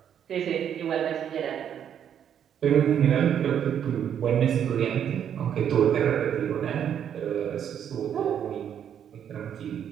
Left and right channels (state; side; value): quieter; left; 9.0 dB